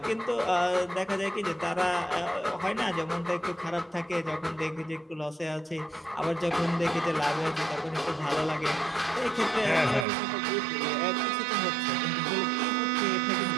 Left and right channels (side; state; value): left; drops out; at 10.1 s